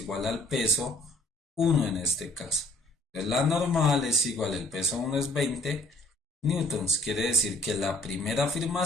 al peso 1 en este caso. Entonces la normal es igual, el peso 1 es 20 newtons. Quiere decir que la primera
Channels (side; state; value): both; normal; correlation 0.60